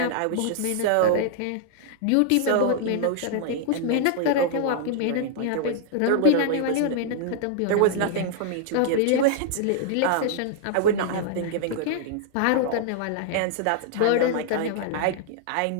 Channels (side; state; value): both; different; correlation -0.01